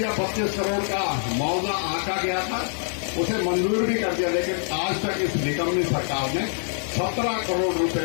25 करोड़ का मुआवजा आंका गया था, उसे मंजूर भी कर दिया। लेकिन आज तक इस निकम्मी सरकार ने 17 करोड़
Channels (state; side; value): silent; right; digital silence